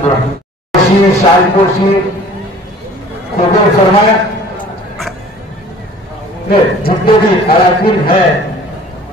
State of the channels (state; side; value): normal; both; correlation 0.48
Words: शालपोशी कबूल फरमाए। जितने भी अराकीन है